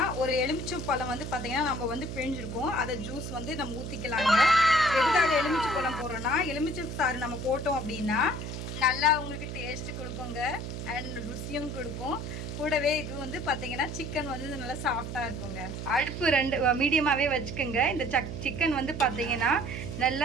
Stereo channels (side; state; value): right; noise; hum, 6 dB below the sound